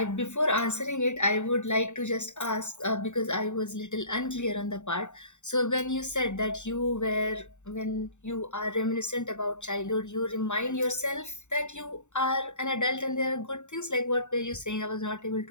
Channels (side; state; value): right; late; 0.84 ms